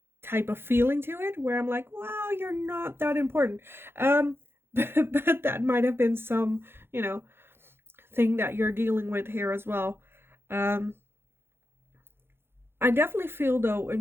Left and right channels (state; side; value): late; left; 0.11 ms